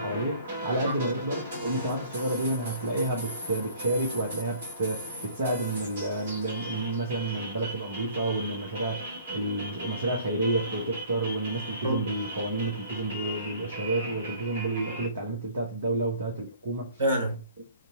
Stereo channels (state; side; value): inverted; both; correlation -0.52